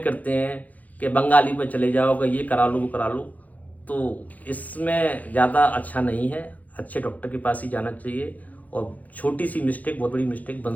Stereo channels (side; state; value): right; late; 0.078 ms